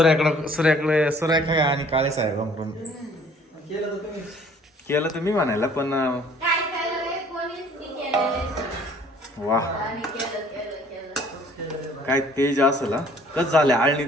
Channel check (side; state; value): both; normal; correlation 0.56